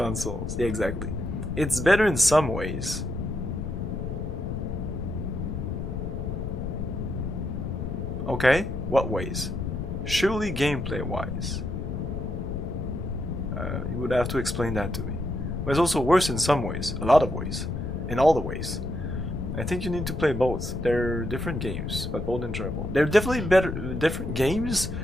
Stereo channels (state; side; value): noise; left; rumble, 4 dB below the sound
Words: Yeah, exactly. It's better in some ways. Okay, what ways? Surely gameplay wise. You would have to explain that to me. But it's also worse in some ways, a lot of ways, in all the ways. I think you need to play both. They're different games, but both enjoyable. They're definitely different games,